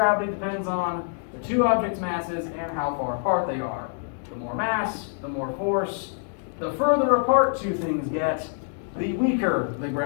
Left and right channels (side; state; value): right; silent; digital silence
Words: depends on the two objects' masses and how far apart they are. The more mass, the more force. The further apart two things get, the weaker the